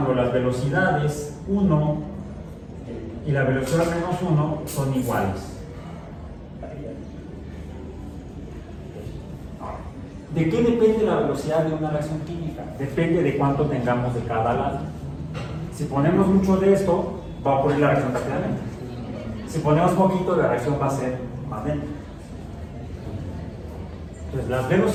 las velocidades 1 y la velocidad -1 son iguales. ¿De qué depende la velocidad de una reacción química? Depende de cuánto tengamos de cada lado. Si ponemos mucho de esto, va a ocurrir la reacción rápidamente. Si ponemos poquito, la reacción va a ser más lenta. Entonces, las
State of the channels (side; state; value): both; identical; correlation 1.00